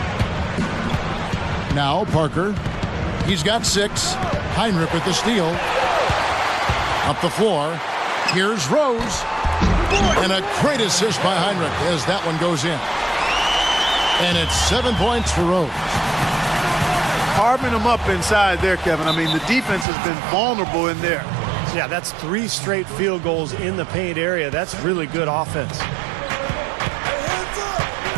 Now Parker. He's got 6. Heinrich with the steal. Up the floor. Here's Rose. And a great assist by Heinrich as that one goes in. And it's 7 points for Rose. Carving them up inside there, Kevin. I mean, the defense has been vulnerable in there. Yeah, that's 3 straight field goals in the paint area. That's really good offense.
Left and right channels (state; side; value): drops out; left; at 19.9 s